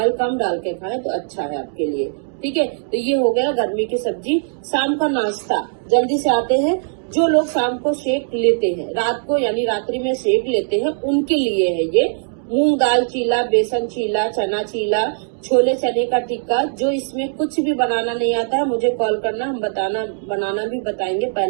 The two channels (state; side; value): silent; left; 63 dB below the other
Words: कम डाल के खाएं तो अच्छा है आपके लिए। ठीक है, तो ये हो गया गर्मी की सब्जी। शाम का नाश्ता जल्दी से आते हैं। जो लोग शाम को शेक लेते हैं, रात को यानी रात्रि में शेक लेते हैं, उनके लिए है ये मूंग दाल चीला, बेसन चीला, चना चीला, छोले चने का टिक्का। जो इसमें कुछ भी बनाना नहीं आता है मुझे कॉल करना, हम बनाना भी बताएंगे।